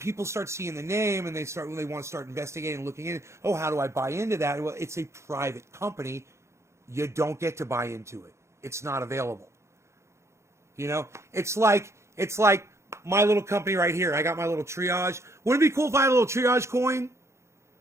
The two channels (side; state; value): left; late; 0.13 ms